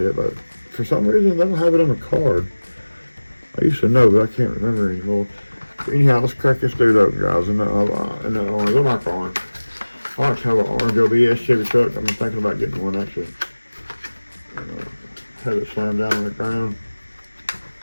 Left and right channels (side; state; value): both; inverted; correlation -1.00